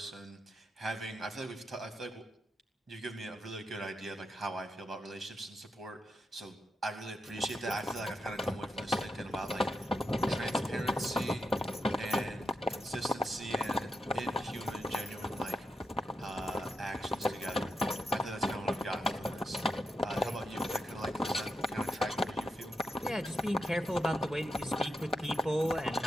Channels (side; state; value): both; normal; correlation 0.85